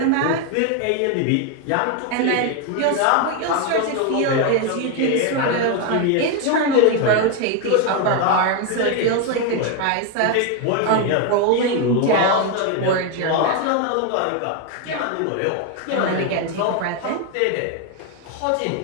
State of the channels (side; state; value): both; different; correlation 0.01